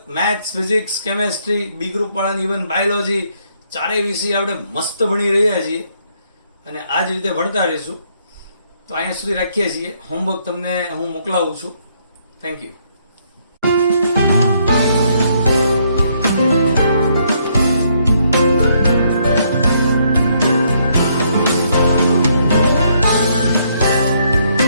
maths, physics, chemistry, B group વાળાની ઇવન બાયોલોજી ચારેય વિષય આપણે મસ્ત ભણી રહ્યા છીએ અને આ જ રીતે ભણતા રહીશું. તો અહીંયા સુધી રાખીએ છીએ. હોમવર્ક તમને હું મોકલાવું છું. Thank you.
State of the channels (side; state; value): both; inverted; correlation -0.71